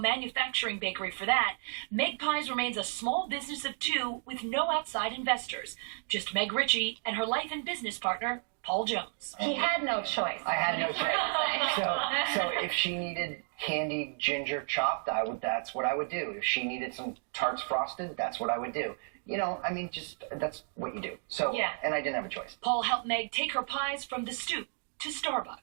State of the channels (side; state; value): left; silent; 56 dB below the other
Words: bakery for that. MegPies remains a small business of two with no outside investors. Just Meg Ritchie and her life and business partner, Paul Jones. He had no choice. I had no choice. So if she needed candied ginger chopped, that's what I would do. If she needed some tarts frosted, that's what I would do. You know, I mean, just that's what you do. So, and I didn't have a choice. Paul helped Meg take her pies from the stoop to